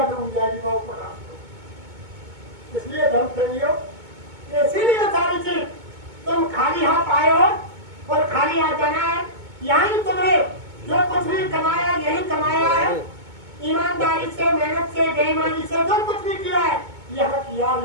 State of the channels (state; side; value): late; left; 2.2 ms